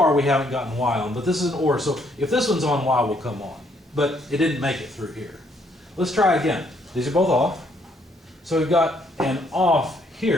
we haven't gotten Y on, but this is an OR. So if this one's on, Y will come on. But it didn't make it through here. Let's try again. These are both off. So we've got an off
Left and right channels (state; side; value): normal; both; correlation 0.69